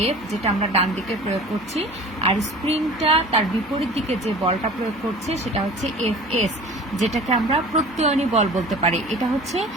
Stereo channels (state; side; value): normal; both; correlation 0.42